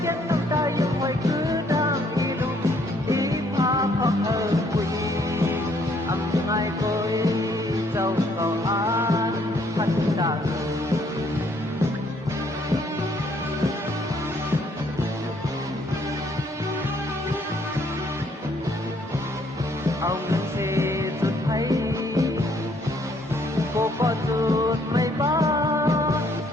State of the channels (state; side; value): normal; both; correlation 0.67